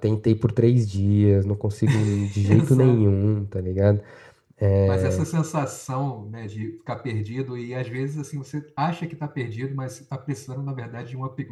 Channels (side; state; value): both; identical; correlation 1.00